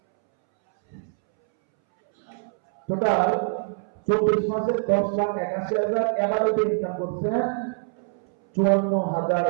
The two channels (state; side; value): silent; left; 62 dB below the other